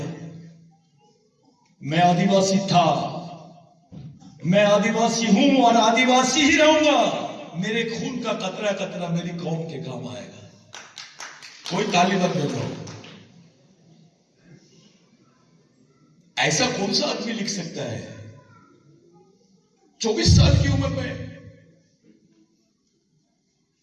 मैं आदिवासी था, मैं आदिवासी हूं और आदिवासी ही रहूंगा। मेरे खून का कतरा कतरा मेरी कौम के काम आएगा। कोई ताली मत बजाओ। ऐसा कौन सा आदमी लिख सकता है 24 साल की उम्र में?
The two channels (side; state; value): both; identical; correlation 1.00